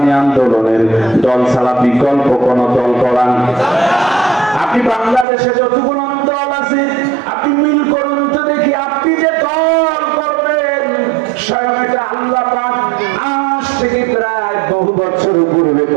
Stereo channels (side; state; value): left; drops out; at 5.2 s